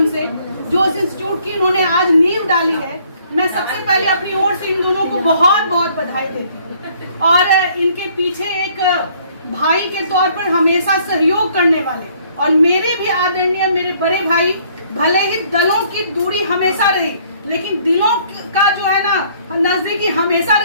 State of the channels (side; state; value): both; inverted; correlation -0.62